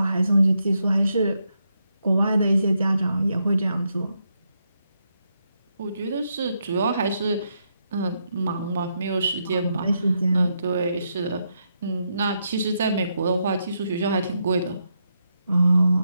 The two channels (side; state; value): both; inverted; correlation -0.81